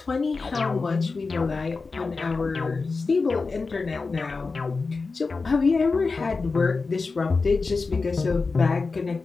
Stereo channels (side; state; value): right; quieter; 4.2 dB